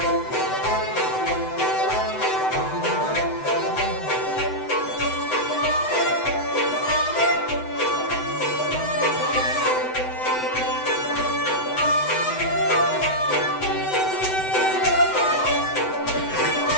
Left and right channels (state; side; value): late; right; 7.9 ms